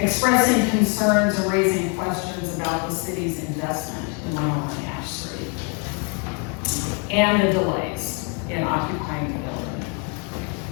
concerns and raising questions about the city's investment in 101 Ash Street and the delays in occupying the building.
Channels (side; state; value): right; quieter; 35.8 dB